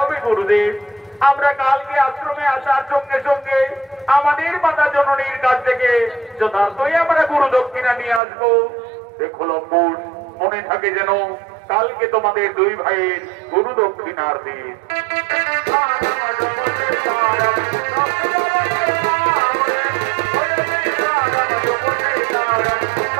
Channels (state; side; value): drops out; left; at 8.2 s